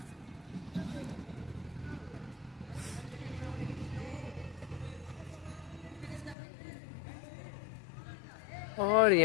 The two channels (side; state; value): right; drops out; at 6.4 s